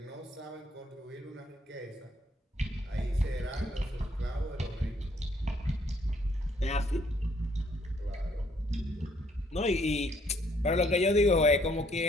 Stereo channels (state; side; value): normal; both; correlation 0.67